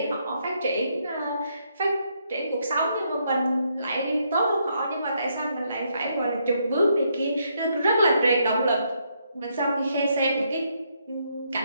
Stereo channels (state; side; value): inverted; both; correlation -0.75